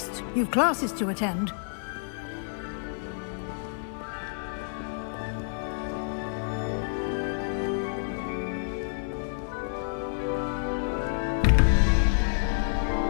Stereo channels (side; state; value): right; silent; 59 dB below the other